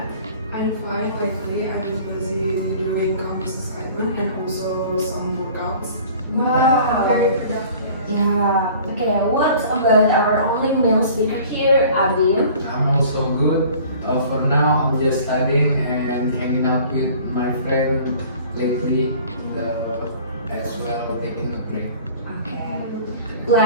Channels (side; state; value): both; inverted; correlation -0.47